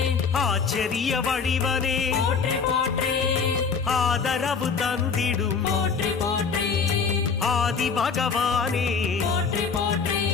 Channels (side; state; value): right; quieter; 5.6 dB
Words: ஆச்சரிய வடிவனே போற்றி போற்றி ஆதரவு தந்திடும் போற்றி போற்றி ஆதி பகவானே போற்றி போற்றி